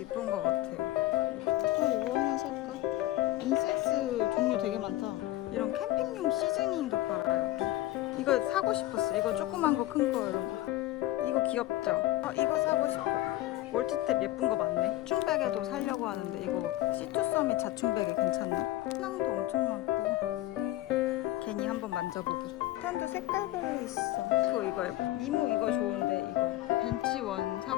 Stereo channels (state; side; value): quieter; right; 16.2 dB